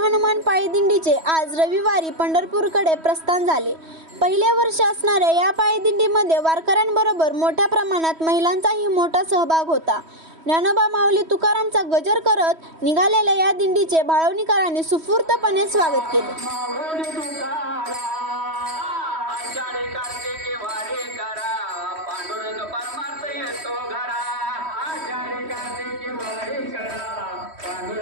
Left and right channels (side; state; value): left; late; 3.1 ms